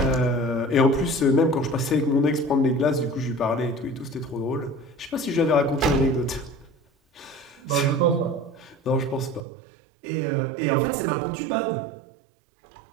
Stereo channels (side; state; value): left; drops out; at 9.4 s